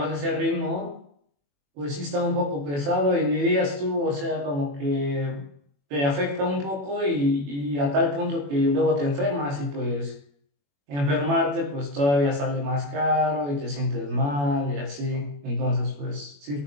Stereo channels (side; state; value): left; late; 21 ms